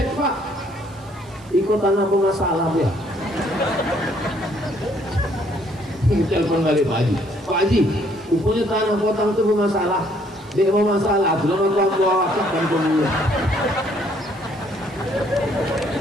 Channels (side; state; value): right; noise; hiss, 27 dB below the sound